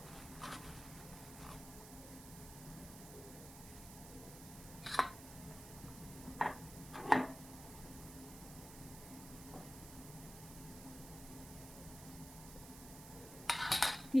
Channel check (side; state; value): right; noise; hiss, 13 dB below the sound